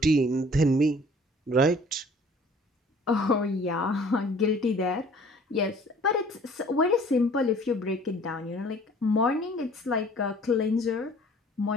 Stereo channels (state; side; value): normal; both; correlation 0.53